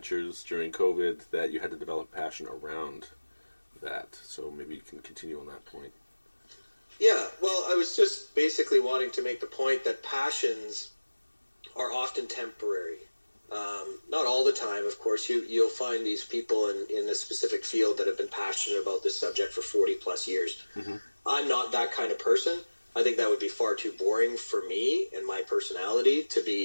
during COVID, that you had to develop passion around that. So maybe you can continue on that point. Yeah, well, I was just basically wanting to make the point that passions are often temporary. Not all the time, of course. You'll find these people in a specific field that have been passionate about this subject for 40 plus years. I'm not that kind of person. I think that would be far too boring for me and my personality to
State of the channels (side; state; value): both; inverted; correlation -1.00